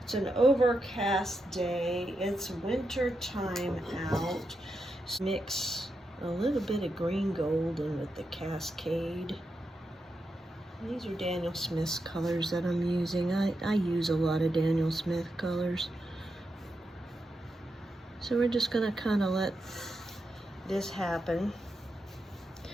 It's an overcast day. It's winter time out. So mix a little bit of green gold in with the Cascade. These are Daniel Smith's colors that I'm using. I use a lot of Daniel Smith colors. So we're just gonna kind of let this happen.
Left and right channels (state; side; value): normal; both; correlation 0.86